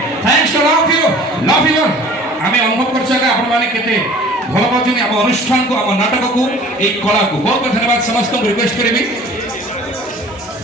भल पाँच आम अनुष्ठान को आम नाटक को एक कला को बहुत बहुत धन्यवाद समस्त को रिक्वेस्ट करी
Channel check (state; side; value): normal; both; correlation 0.47